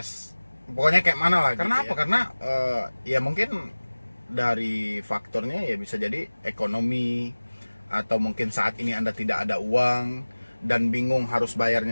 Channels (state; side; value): inverted; both; correlation -1.00